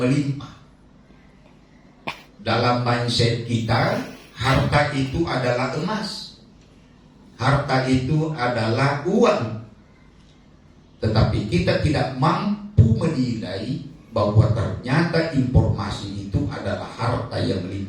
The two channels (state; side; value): identical; both; correlation 1.00